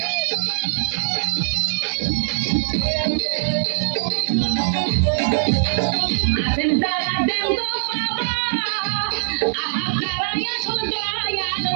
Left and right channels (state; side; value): silent; left; digital silence